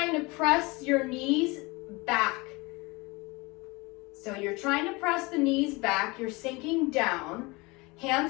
to press your knees back. So you're trying to press the knees back, you're sinking down.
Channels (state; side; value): quieter; right; 24.9 dB